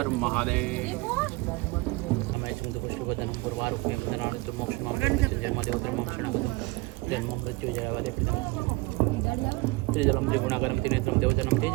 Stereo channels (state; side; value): quieter; left; 24.2 dB